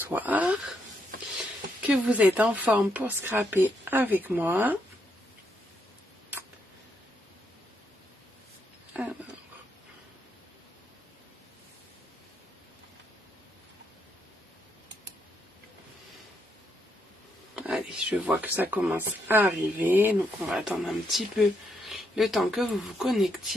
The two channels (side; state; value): both; normal; correlation 0.77